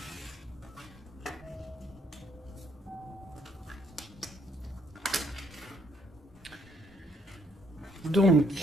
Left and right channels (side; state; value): both; normal; correlation 0.68